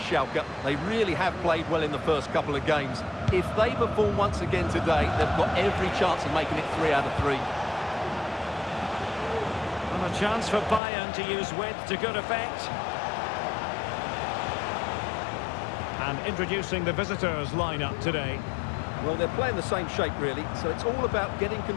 They really have played well in the first couple of games. If they perform once again today, they've got every chance of making it 3 out of 3. And a chance for Bayern to use width to good effect. And introducing the visitors lineup today. Well, they're playing the same shape, really, so it's all about getting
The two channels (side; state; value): right; drops out; at 10.8 s